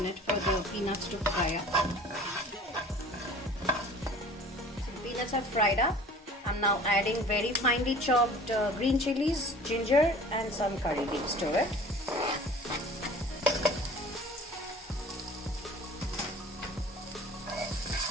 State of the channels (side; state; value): both; normal; correlation 0.45